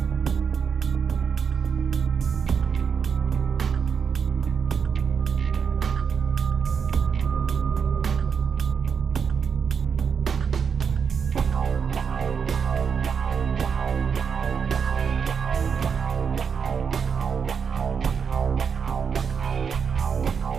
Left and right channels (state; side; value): quieter; left; 6.4 dB